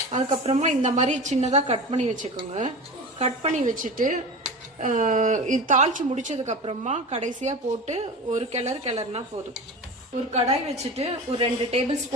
அதுக்கப்புறமா இந்த மாதிரி சின்னதாக கட் பண்ணி வச்சுக்கோங்க. கட் பண்ணி வச்சுட்டு இது தாளிச்சு முடிச்சதுக்கு அப்புறமா கடைசியாக போட்டு ஒரு கிளறுனா போதும். ஒரு கடாய் வச்சுட்டு ஒரு 2 டேபிள்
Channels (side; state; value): both; normal; correlation 0.31